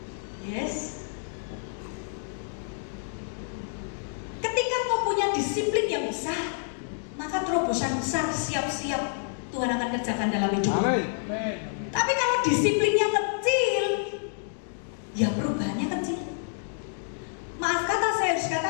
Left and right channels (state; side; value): silent; right; digital silence